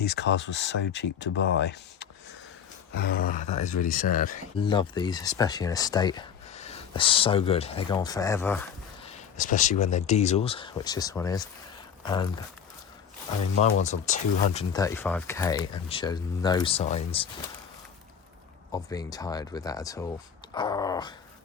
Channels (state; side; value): quieter; right; 7.8 dB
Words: cars were so cheap to buy. Ah, that is really sad. Love these, especially in estate. They're so good. They go on forever, especially when they're diesels, which this one is. And I mean, my one's on 235k and shows no signs of being tired with that at all. Oh,